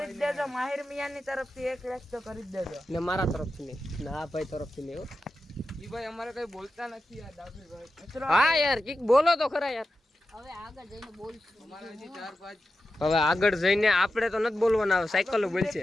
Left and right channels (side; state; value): both; normal; correlation 0.91